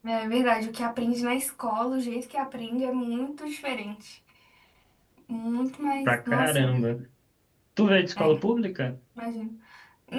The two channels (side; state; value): both; identical; correlation 1.00